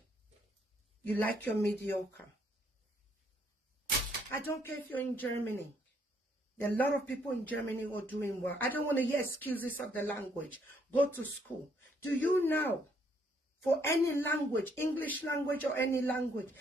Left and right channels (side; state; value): both; normal; correlation 0.69